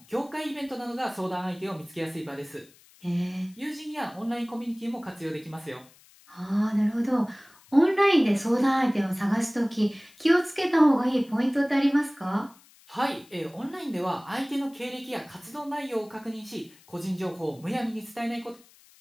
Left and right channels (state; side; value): noise; left; hiss, 27 dB below the sound